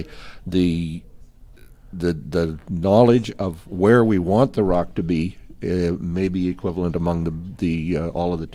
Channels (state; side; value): identical; both; correlation 1.00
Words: the knowledge of where we want the rock to be may be equivalent among the all of the